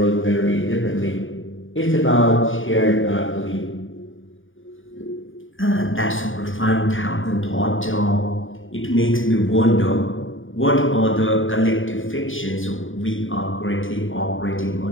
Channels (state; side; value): late; right; 0.57 ms